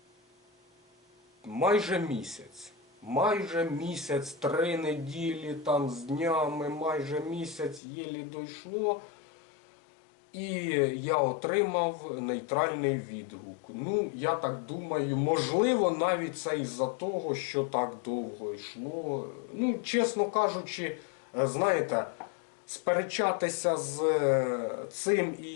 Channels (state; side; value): drops out; right; at 7.8 s